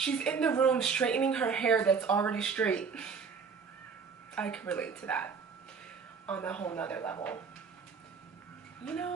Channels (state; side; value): quieter; left; 5.7 dB